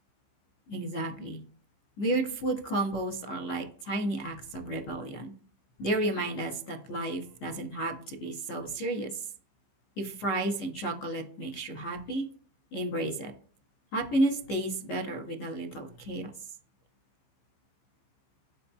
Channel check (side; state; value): right; late; 15 ms